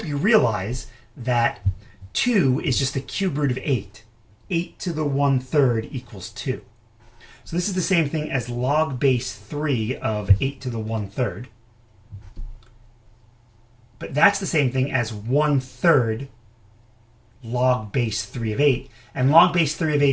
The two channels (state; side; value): identical; both; correlation 1.00